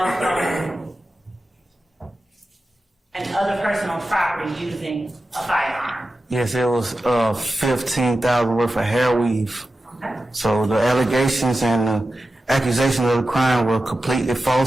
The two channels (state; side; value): normal; both; correlation 0.92